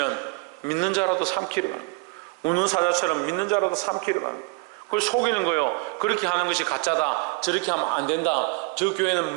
믿는 자라도 삼키려 하는 거예요. 우는 사자처럼 믿는 자라도 삼키려 하는 거예요. 그걸 속이는 거예요. 그렇게 하는 것이 가짜다, 저렇게 하면 안 된다, 저 교회는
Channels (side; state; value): left; quieter; 28.6 dB